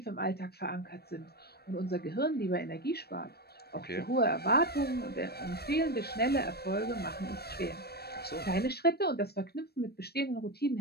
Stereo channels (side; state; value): right; late; 0.47 ms